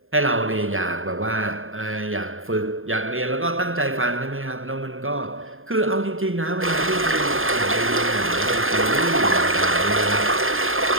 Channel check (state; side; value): late; left; 0.60 ms